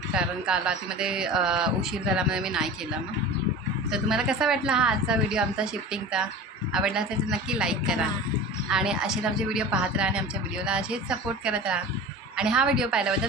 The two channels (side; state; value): both; normal; correlation 0.35